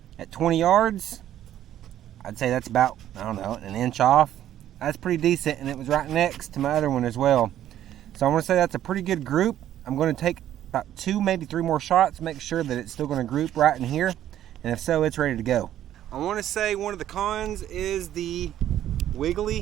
at 20 yards. I'd say that's about, I don't know, an inch off. That's pretty decent, and it was right next to my other one as well. So I'm going to say that's a pretty good group. I'm going to take about 2, maybe 3 more shots, make sure that it's still going to group right in here, and if so, it's ready to go. I want to say one of the cons is the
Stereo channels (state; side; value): quieter; left; 11.8 dB